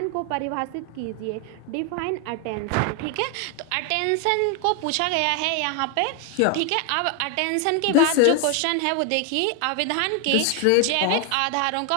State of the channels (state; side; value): different; both; correlation 0.01